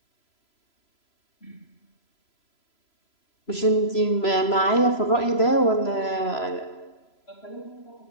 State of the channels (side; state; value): right; late; 3.0 ms